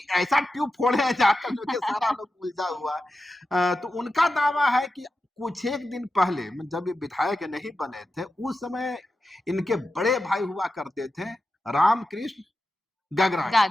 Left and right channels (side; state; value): both; normal; correlation 0.91